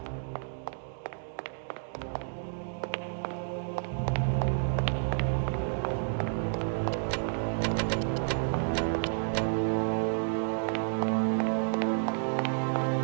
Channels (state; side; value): silent; left; digital silence